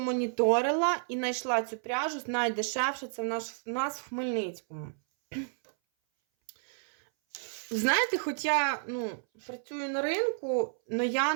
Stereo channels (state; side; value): silent; left; 57 dB below the other